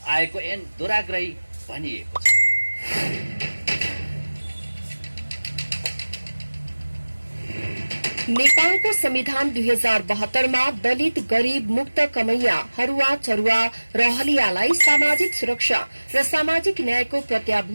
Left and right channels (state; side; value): inverted; both; correlation -1.00